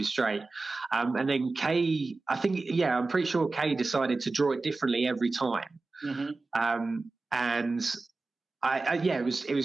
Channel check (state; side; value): quieter; left; 3.6 dB